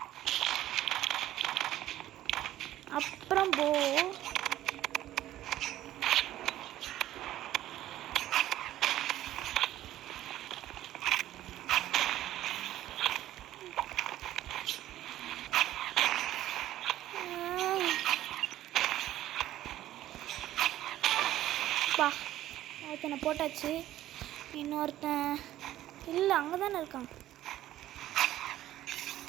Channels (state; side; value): quieter; left; 13.7 dB